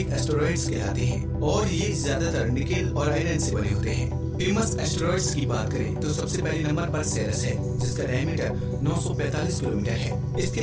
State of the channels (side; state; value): both; identical; correlation 1.00